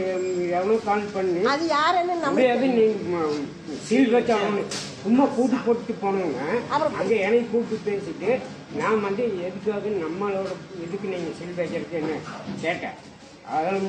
எவனோ கால் பண்ணி அது யாருன்னு நம்ம சீல் வச்சாங்க. சும்மா கூட்டு போட்டு போனவங்க அங்க என்னை கூப்பிட்டு பேசிட்டு நான் வந்து எதுக்காக நம்மளோட இதுக்கு நீங்க சீல் வைக்கிறதுக்கு என்ன கேட்டேன். அதெல்லாம்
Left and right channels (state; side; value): identical; both; correlation 1.00